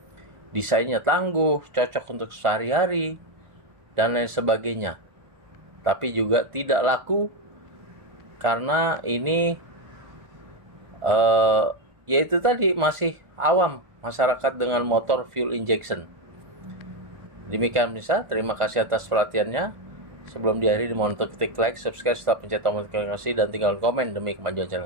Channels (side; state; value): left; late; 1.5 ms